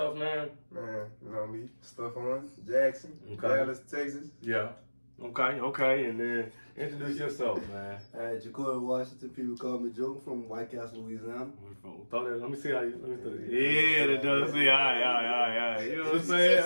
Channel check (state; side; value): inverted; both; correlation -1.00